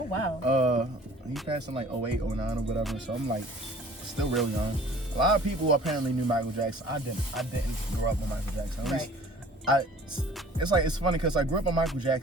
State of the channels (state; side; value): normal; both; correlation 0.50